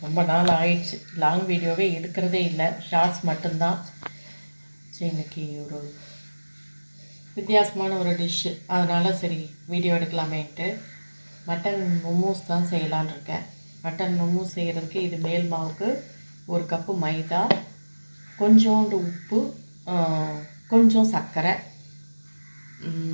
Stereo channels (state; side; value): inverted; both; correlation -1.00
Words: ரொம்ப நாள் ஆயிடுச்சு. லாங் வீடியோவே எடுக்கிறதே இல்லை, ஷார்ட்ஸ் மட்டும்தான். சரி, இன்றைக்கி ஒரு வித்தியாசமான ஒரு டிஷ்ஷு, அதனால் சரி வீடியோ எடுக்கலாமேன்ட்டு மட்டன் மோமோஸ் தான் செய்யலான்னு இருக்கேன். மட்டன் மோமோஸ் செய்கிறதுக்கு இது மேல் மாவுக்கு 1 கப்பு மைதா, கொஞ்சோண்டு உப்பு, கொஞ்சம் சர்க்கரை,